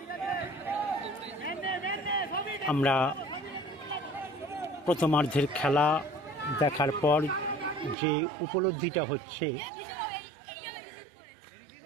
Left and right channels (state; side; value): drops out; left; at 8.0 s